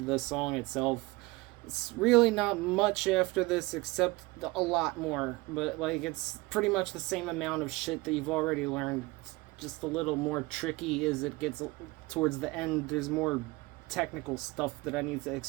the song itself. It's really not much after this except a lot more, but like it's pretty much the same amount of shit that you've already learned. It's just a little more tricky as it gets towards the end. There's more technical stuff that I need to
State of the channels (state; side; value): quieter; left; 22.3 dB